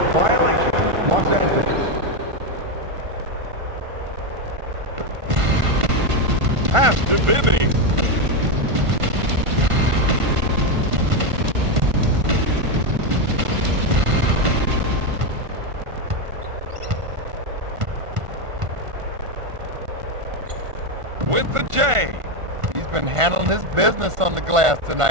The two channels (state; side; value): late; left; 1.5 ms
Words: violation, Los Angeles. Pass to Bibby. With the J. He's been handling his business on the glass